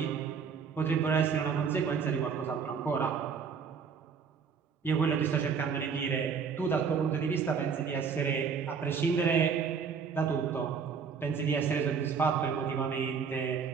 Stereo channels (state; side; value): quieter; left; 6.2 dB